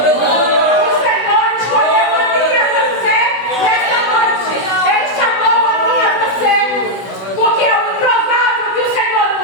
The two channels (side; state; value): right; late; 16 ms